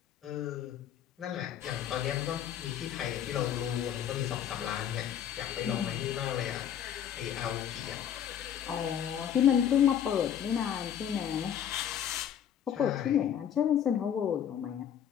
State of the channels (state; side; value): quieter; right; 9.4 dB